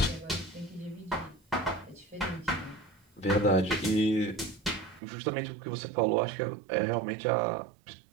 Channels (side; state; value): left; drops out; at 5.0 s